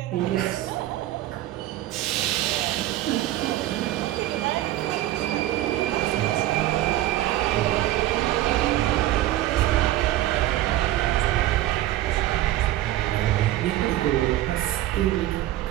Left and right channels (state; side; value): quieter; left; 14.8 dB